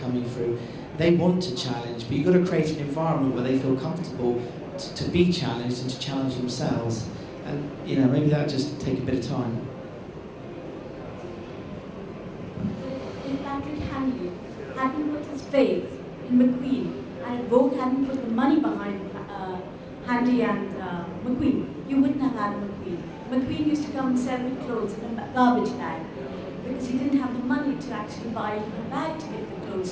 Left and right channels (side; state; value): both; identical; correlation 1.00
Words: coming through. They want to challenge, but you've got to create an environment where they feel comfortable to be challenged and to challenge themselves. And maybe that just take a bit of time. If Patrick Handley hadn't put his faith in McQueen, and Vogue hadn't put the money behind Handley and McQueen, you wouldn't have had McQueen. McQueen used to come and sell the clothes in a garbage bag because he didn't have the money to actually buy a bag to give the clothes